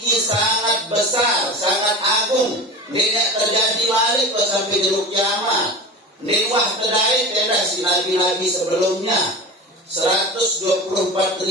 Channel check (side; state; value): both; normal; correlation 0.31